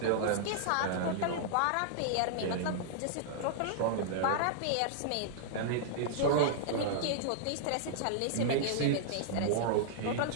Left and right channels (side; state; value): both; different; correlation -0.01